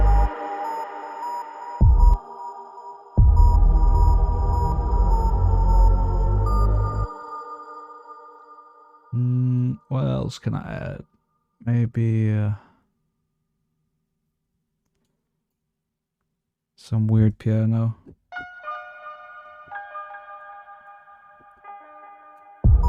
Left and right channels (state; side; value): identical; both; correlation 1.00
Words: What else can I add? Maybe some weird piano.